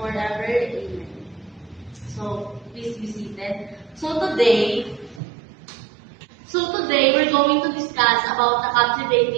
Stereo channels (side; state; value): left; drops out; at 5.2 s